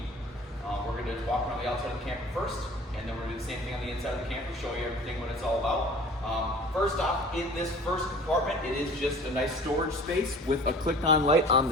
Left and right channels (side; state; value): both; normal; correlation 0.45